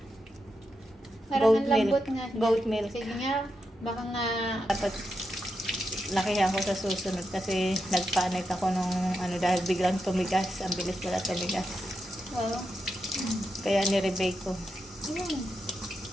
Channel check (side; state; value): both; normal; correlation 0.86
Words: parang Goat ang lambot milk. nga. Goat milk. Sige nga, baka nga Dapat lakihan ko sa susunod kasi nagpanic ako nung dahil biglang tumigas. Ang bilis pala tumigas. wow. Kaya ni-rebake ko. Ayan.